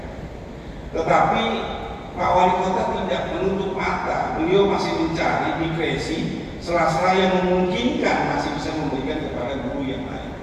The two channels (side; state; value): both; identical; correlation 1.00